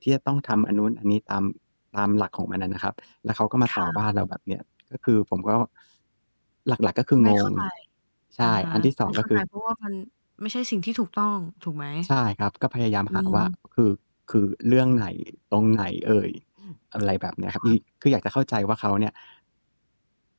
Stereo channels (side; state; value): both; inverted; correlation -1.00